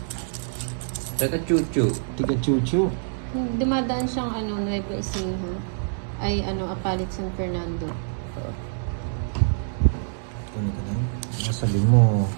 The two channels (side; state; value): left; silent; digital silence